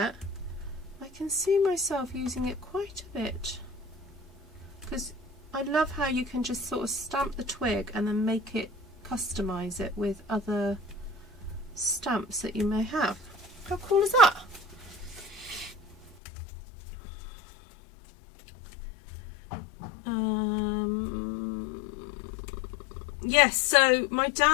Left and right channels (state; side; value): drops out; right; at 16.2 s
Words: I can see myself using it quite a bit because I love how you can just sort of stamp the twig and then make it, customize it with other stamps that you may have. How cool is that? Yes, so my